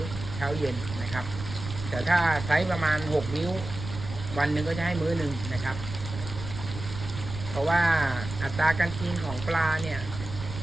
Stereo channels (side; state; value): right; noise; rumble, 9 dB below the sound